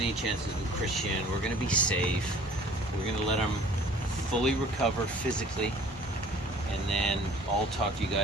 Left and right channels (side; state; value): both; normal; correlation 0.51